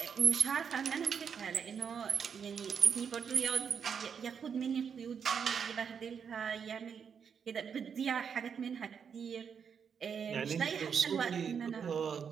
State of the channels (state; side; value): quieter; left; 6.9 dB